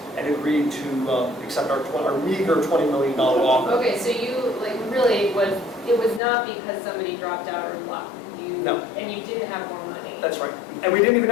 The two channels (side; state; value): right; drops out; at 6.2 s